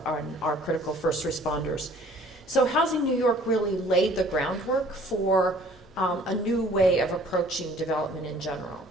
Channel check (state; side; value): normal; both; correlation 0.54